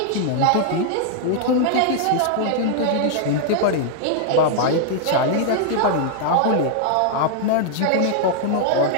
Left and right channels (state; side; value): different; both; correlation -0.01